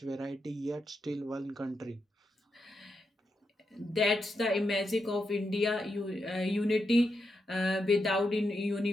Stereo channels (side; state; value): both; normal; correlation 0.85